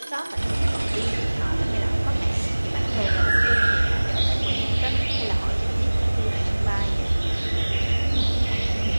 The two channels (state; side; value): inverted; both; correlation -1.00